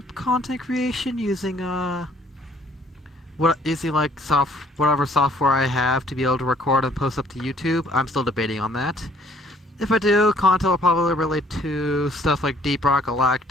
content creation using like whatever software I have to be able to record and post up to YouTube. I'm still debating on that. If I do, content will probably relate to stuff like Deep Rock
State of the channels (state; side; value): normal; both; correlation 0.60